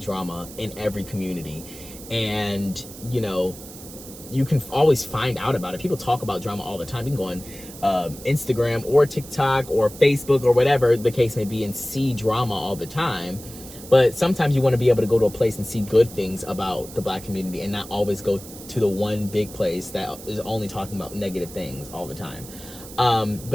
drama in every community, and you know, you can always find out about it. People talk about drama all the time. You can go on Instagram or TikTok or Facebook or whatever the case may be and see drama all the time. But sometimes you want to be able to go to a place and see good things about the Black community and not always go to the one big place that is only talking about negative things all the time.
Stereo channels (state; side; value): noise; right; hiss, 16 dB below the sound